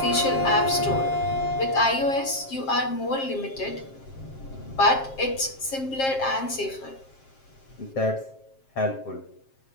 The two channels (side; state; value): right; late; 7.5 ms